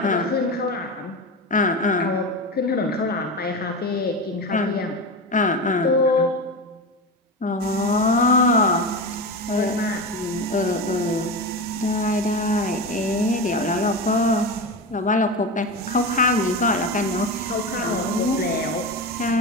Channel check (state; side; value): normal; both; correlation 0.22